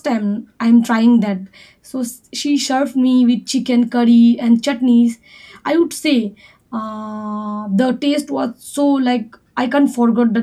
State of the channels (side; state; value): both; identical; correlation 1.00